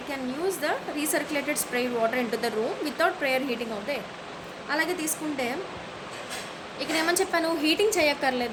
can use the recirculated sprayed water into the room without prior heating of the air. అలాగే తీసుకుంటే ఇక్కడ ఏమని చెప్పాను, heating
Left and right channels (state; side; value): identical; both; correlation 1.00